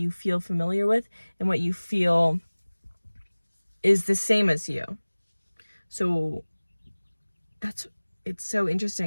feel familiar with and what you feel is the same as you. So it's so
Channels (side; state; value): both; inverted; correlation -1.00